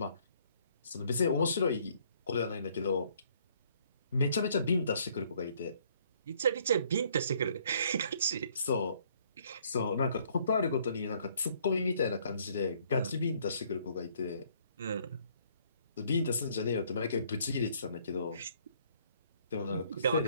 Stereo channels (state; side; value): inverted; both; correlation -0.64